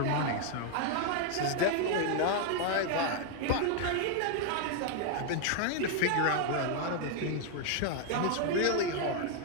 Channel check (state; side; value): different; both; correlation 0.00